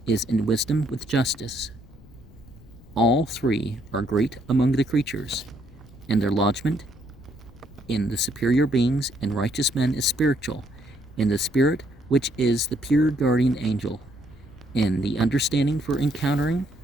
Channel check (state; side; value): noise; left; rumble, 22 dB below the sound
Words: is in wisdom with justice. All three are great among the creatures, and their lodgment in the superior beings and righteous men is spiritual, in the spirit which is the pure guardian angel, in the understanding for encountering,